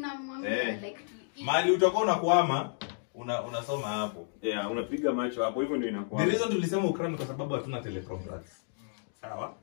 mwambie like mali utakuwa unakwama unasoma hapo. Yeah, unapiga macho hapo, hivyo ndio inakuwa. The reason tulisema ukram kwa sababu hatuna teleprompters. Sawa?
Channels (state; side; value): silent; right; digital silence